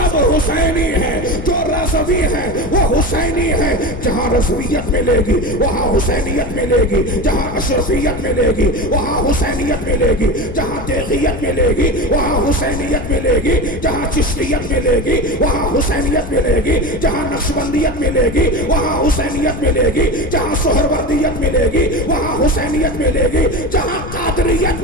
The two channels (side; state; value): left; noise; rumble, 10 dB below the sound